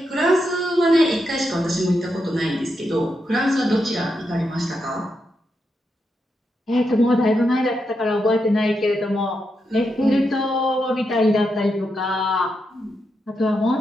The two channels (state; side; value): normal; both; correlation 0.84